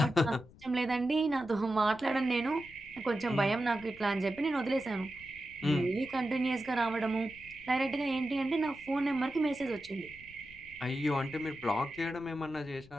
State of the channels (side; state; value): left; noise; rumble, 23 dB below the sound